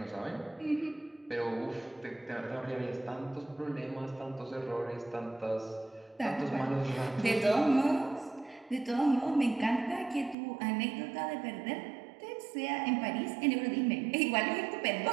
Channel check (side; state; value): left; drops out; at 10.4 s